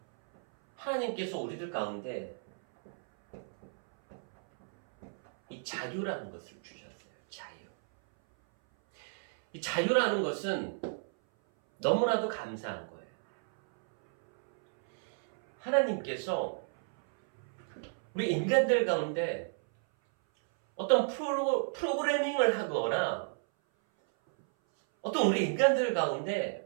하나님께서 우리들 가운데 이 자유라는 것을 주셨어요. 자유. 이 자유라는 것은 너무나도 감사한 거예요. 하나님께서 우리 인간들 가운데 어떤 프로그래밍을 하거나 어떤 우리 인간들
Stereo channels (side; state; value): left; silent; 57 dB below the other